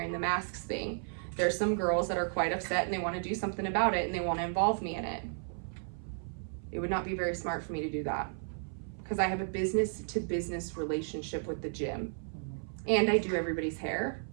the masks thing. There's some girls that are quite upset and they want to do something about it and they want to involve me in it. It would not be very smart for me to do that, because I have a business to business relationship with the gym, and I do everybody's hair,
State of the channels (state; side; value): silent; left; 55 dB below the other